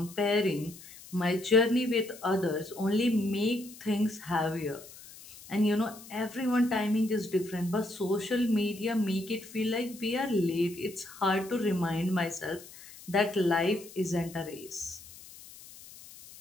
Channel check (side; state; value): left; noise; hiss, 18 dB below the sound